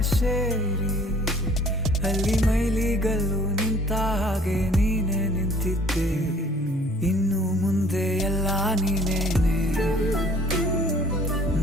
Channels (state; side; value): normal; both; correlation 0.54